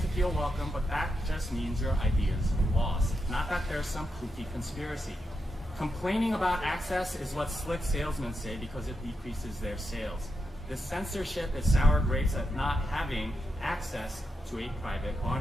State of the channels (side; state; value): both; normal; correlation 0.85